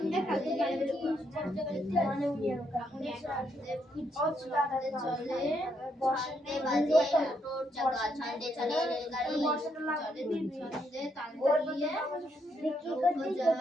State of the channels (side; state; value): both; normal; correlation 0.76